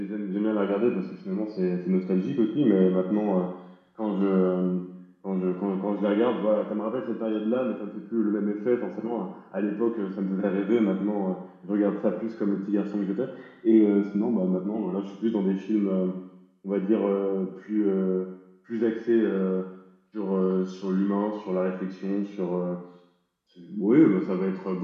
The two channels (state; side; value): identical; both; correlation 1.00